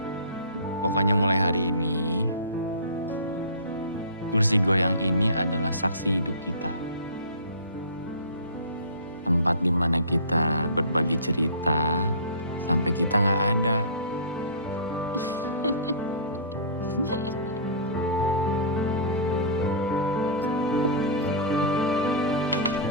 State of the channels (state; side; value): inverted; both; correlation -0.37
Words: Pokoknya mulai hari ini, kursi goyang ini adalah saksi hidup kita. Tempat di mana kita berbagi cerita sampai kita nggak ada.